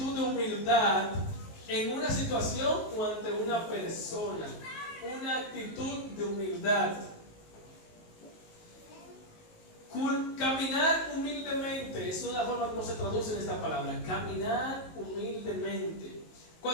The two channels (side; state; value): right; late; 19 ms